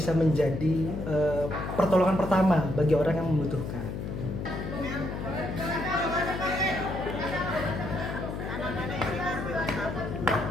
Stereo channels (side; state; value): left; noise; hum, 5 dB below the sound